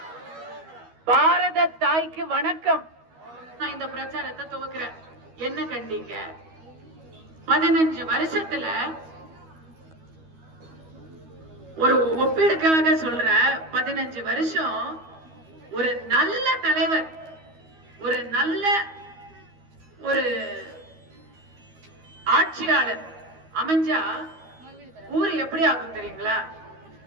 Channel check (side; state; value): left; late; 12 ms